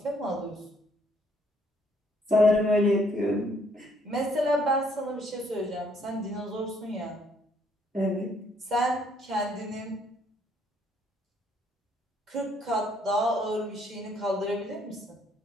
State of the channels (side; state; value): both; normal; correlation 0.67